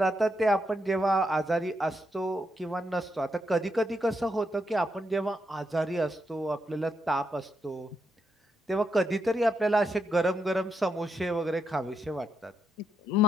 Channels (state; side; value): normal; both; correlation 0.80